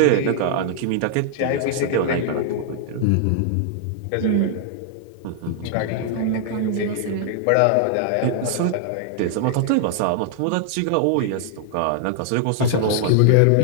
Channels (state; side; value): different; both; correlation -0.01